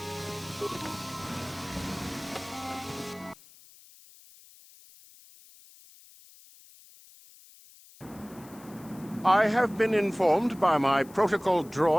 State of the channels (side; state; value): left; noise; hiss, 23 dB below the sound